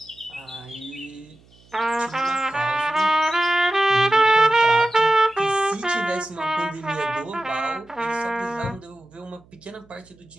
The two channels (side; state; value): right; noise; hum, 29 dB below the sound